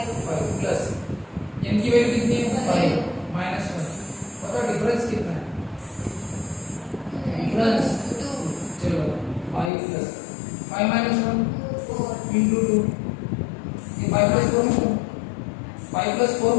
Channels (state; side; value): drops out; right; at 9.7 s